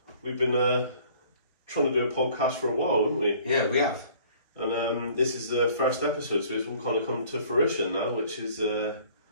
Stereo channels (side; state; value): both; inverted; correlation -0.54